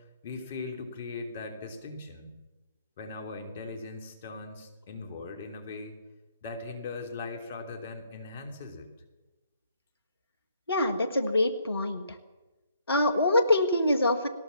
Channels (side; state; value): both; inverted; correlation -0.68